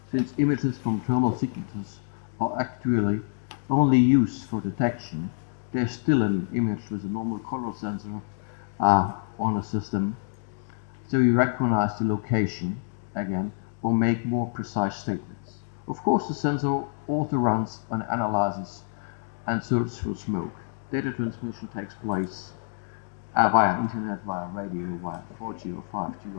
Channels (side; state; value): right; silent; digital silence